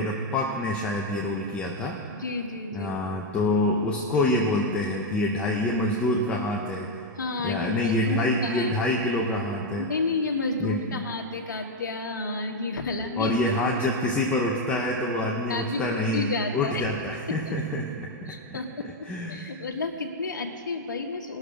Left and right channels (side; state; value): both; normal; correlation 0.03